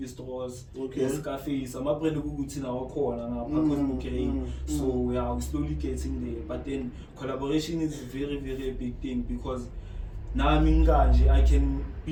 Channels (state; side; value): identical; both; correlation 1.00